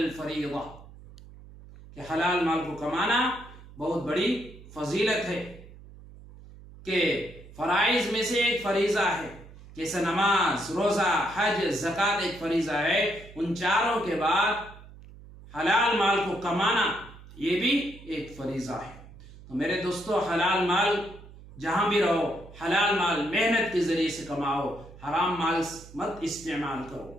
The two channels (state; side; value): noise; right; hum, 19 dB below the sound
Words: کہ حلال مال کو کمانا بہت بڑی فضیلت ہے، کہ فرائض میں سے ایک فریضہ ہے۔ جیسے نماز، روزہ، حج، زکوٰۃ ایک فریضہ ہے، ان چاروں کے بعد حلال مال کو کمانا یہ بھی ایک فریضہ ہے۔ تو میرے دوستو، حلال مال جہاں بھی رہو، حلال مال محنت کے ذریعے سے کماؤ، حرام مال مت استعمال کرو۔